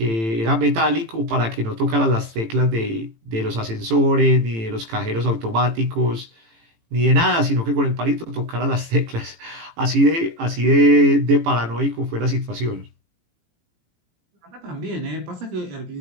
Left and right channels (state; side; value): late; left; 18 ms